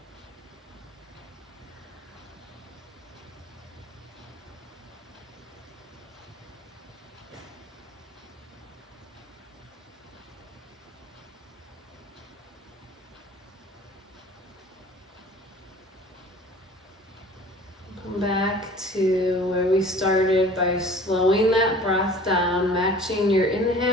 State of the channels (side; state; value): both; normal; correlation 0.46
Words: Back to where we started by slowing that breath down, matching your